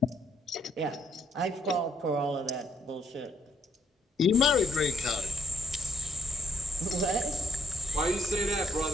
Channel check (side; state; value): both; normal; correlation 0.69